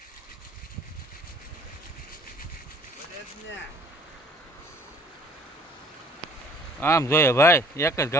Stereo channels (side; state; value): both; normal; correlation 0.55